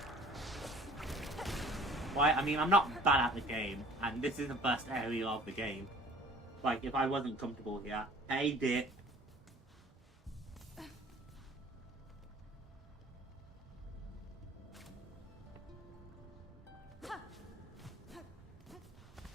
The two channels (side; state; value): both; normal; correlation 0.50